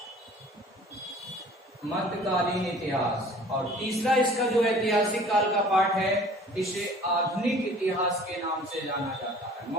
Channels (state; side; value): normal; both; correlation 0.49